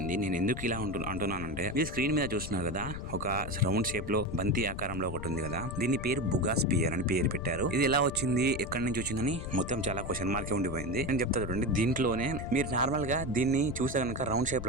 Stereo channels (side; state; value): left; noise; rumble, 8 dB below the sound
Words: నేను ఎందుకు ఇలా అంటున్నానంటే, ఈ స్క్రీన్ మీద చూస్తున్నారు కదా, ఒక రౌండ్ షేప్ లో బంతి ఆకారంలో ఒకటి ఉంది కదా, దీని పేరు బుగాస్పియర్ అని పేరు పెట్టారు. ఇది ఎలా వచ్చింది, ఎక్కడి నుంచి వచ్చిందని మొత్తం చాలా క్వశ్చన్ మార్కే ఉండిపోయింది. నేను చెప్తా చూడండి. దీంట్లోనే మీరు నార్మల్ గా దీన్ని చూస్తే కనుక రౌండ్ షేప్